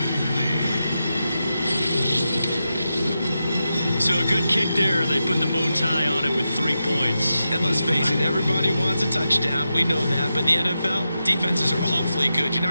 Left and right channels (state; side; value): inverted; both; correlation -0.89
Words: So a good kick there, and they put the bow tie on it with 3 points. And let's face it, everybody wants a touchdown. We know that. But in the NFL, defenses are awfully good. You're